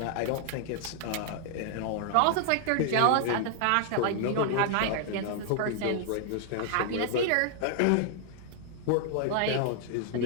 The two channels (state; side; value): different; both; correlation 0.00